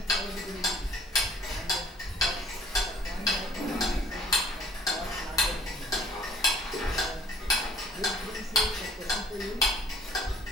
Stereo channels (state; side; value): normal; both; correlation 0.56